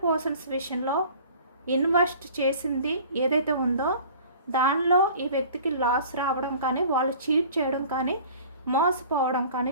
పర్సన్స్ విషయంలో ఇన్వెస్ట్ చేసింది ఏదైతే ఉందో దానిలో ఈ వ్యక్తికి లాస్ రావడం కానీ, వాళ్ళు చీట్ చేయడం కానీ, మోసపోవడం కానీ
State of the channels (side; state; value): both; inverted; correlation -0.46